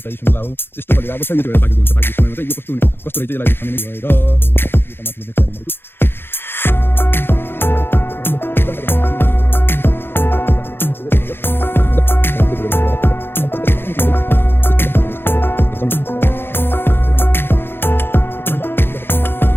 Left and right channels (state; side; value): late; right; 0.10 ms